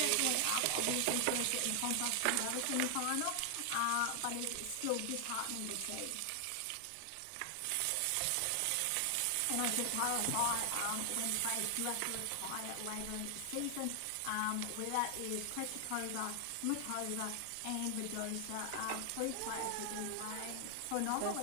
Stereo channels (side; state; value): both; different; correlation 0.00